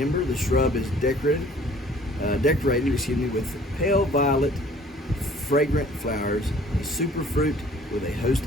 the shrub is decorated with pale violet, fragrant flowers, a superfruit with a host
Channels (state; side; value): normal; both; correlation 0.53